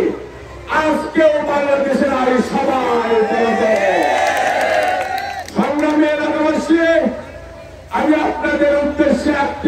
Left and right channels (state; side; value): identical; both; correlation 1.00